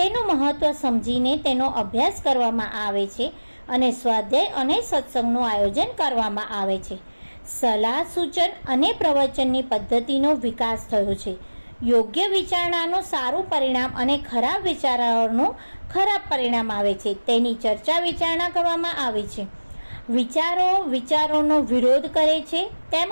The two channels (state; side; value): inverted; both; correlation -1.00